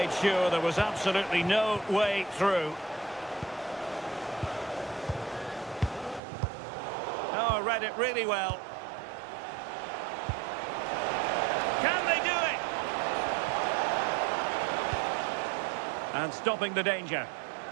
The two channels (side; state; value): left; drops out; at 6.2 s